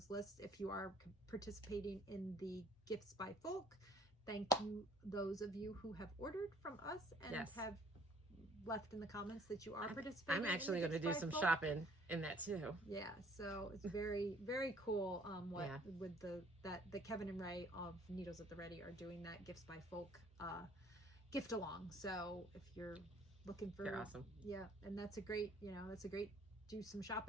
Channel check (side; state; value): both; normal; correlation 0.59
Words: lists, if you are participating in the Gifts by Folk, thank you, those of you who have ordered from us and have left in the comments that you are participating. I'm actually going to do some shopping in that too. Yeah, so it's very, very cool. With the Kevin and Ray of Needles at the Ready are doing that Gifts by Folk gift along. So if you're looking for, they're awesome. Yeah, and that's a great, do some